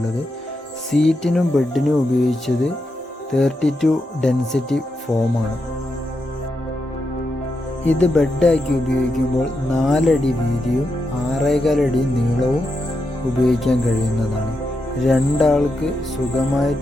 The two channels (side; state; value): both; normal; correlation 0.85